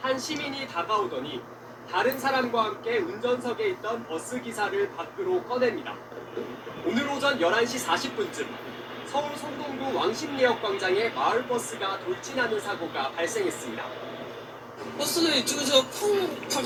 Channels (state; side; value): identical; both; correlation 1.00